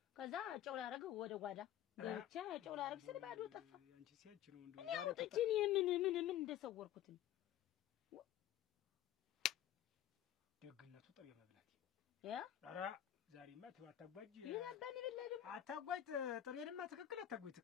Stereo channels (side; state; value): right; quieter; 11.8 dB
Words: ከዛ ጫው ላረገው ወደ ጓዳ ገብቼ ጫው ላረግ ስል ባዶ ጠፋ አንቺ ሲያንቺ ነው እንደው እኔ አውጥቼ ምን እንደሰወርኩት ደግነቱ ጠብ መብላት ያ ኧረ ዛሬማ አታጓጅ ይላባኝ ለለም አታጓጅ ጥሬንማ ትክክል አታጓጅ